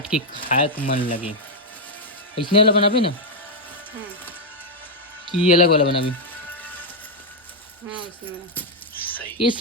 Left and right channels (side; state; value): both; normal; correlation -0.01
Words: के खाए को मन लगे। इसने वाला बनाबे ना कि अलग वाला बनाबे। ये